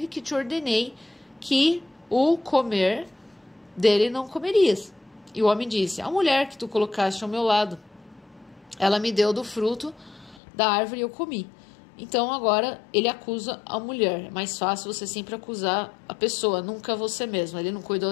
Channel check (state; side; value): drops out; right; at 10.4 s